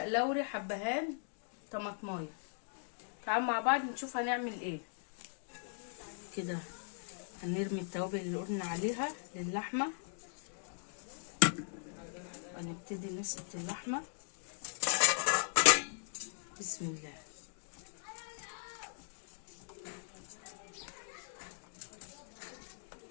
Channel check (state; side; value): silent; right; digital silence